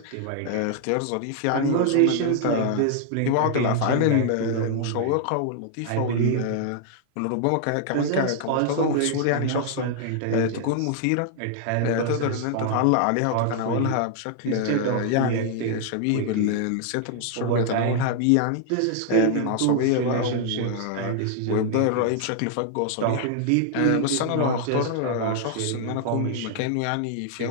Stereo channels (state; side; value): different; both; correlation 0.00